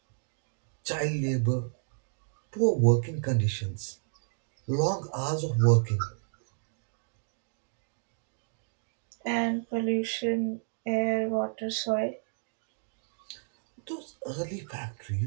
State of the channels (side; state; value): left; silent; digital silence